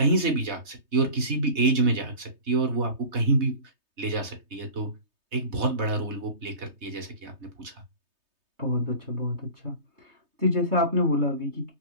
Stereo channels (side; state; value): left; late; 3.2 ms